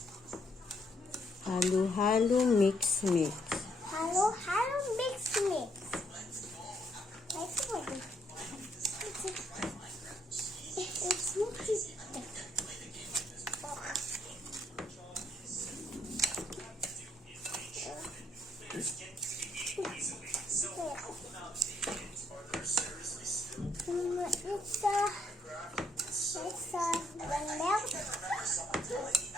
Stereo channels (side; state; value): both; normal; correlation 0.72